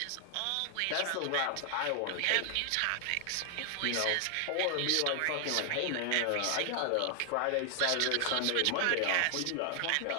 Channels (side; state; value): both; different; correlation 0.00